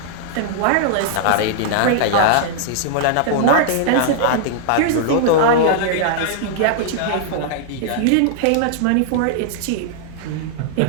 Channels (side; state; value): both; different; correlation -0.01